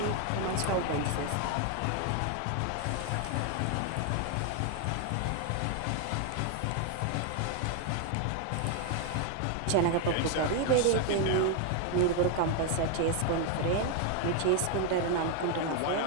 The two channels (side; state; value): both; different; correlation 0.01